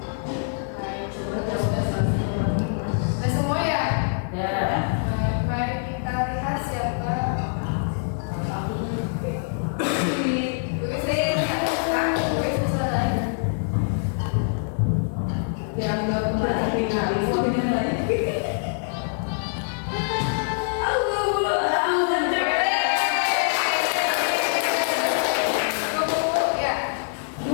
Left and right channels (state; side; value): silent; right; 62 dB below the other